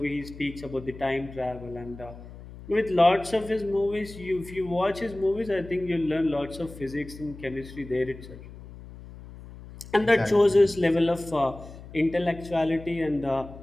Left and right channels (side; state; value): left; noise; hum, 16 dB below the sound